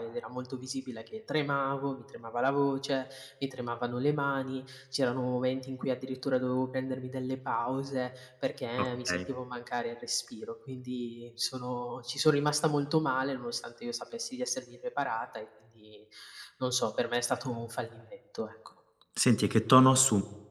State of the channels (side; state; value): both; identical; correlation 1.00